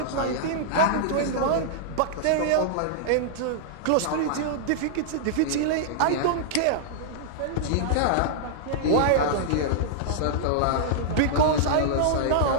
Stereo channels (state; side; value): different; both; correlation -0.01